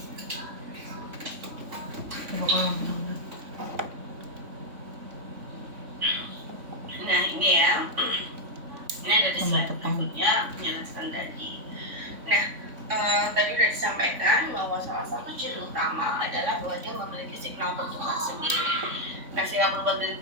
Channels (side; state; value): left; late; 3.5 ms